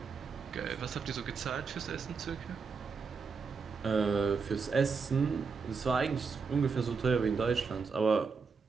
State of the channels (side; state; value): left; quieter; 5.2 dB